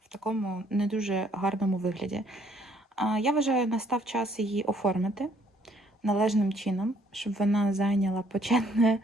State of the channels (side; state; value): both; normal; correlation 0.64